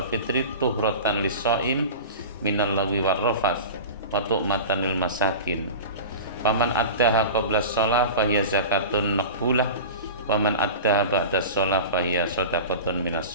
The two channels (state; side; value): inverted; both; correlation -0.31